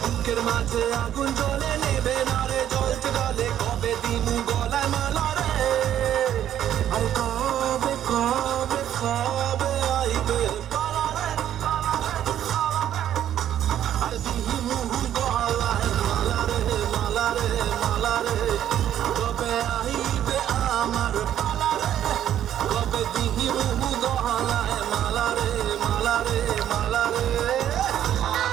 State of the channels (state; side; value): quieter; left; 11.0 dB